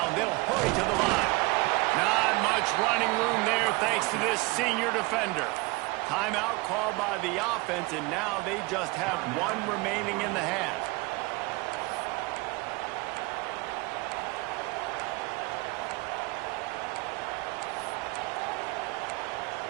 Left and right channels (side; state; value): left; quieter; 24.1 dB